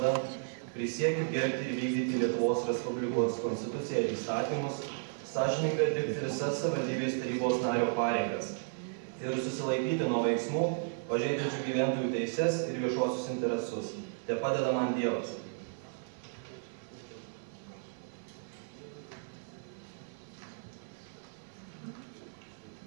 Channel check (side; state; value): left; silent; 55 dB below the other